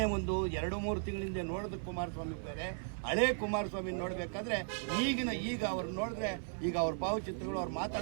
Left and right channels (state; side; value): silent; left; 53 dB below the other